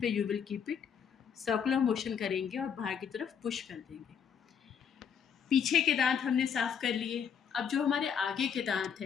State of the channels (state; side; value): quieter; right; 7.5 dB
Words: you will keep it, circular motion करेंगे और बाहर की तरफ पुश कर देंगे। पीछे के दांत हमने साफ कर लिए। अब जो हमारे आगे के दांत